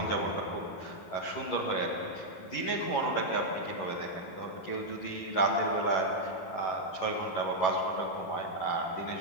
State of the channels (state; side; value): late; right; 11 ms